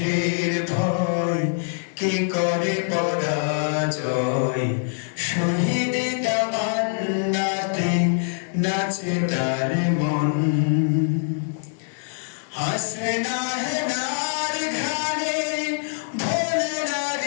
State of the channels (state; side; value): silent; right; digital silence